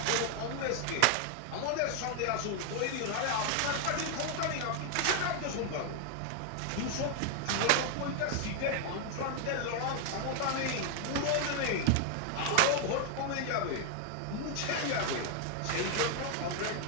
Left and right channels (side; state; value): both; different; correlation 0.00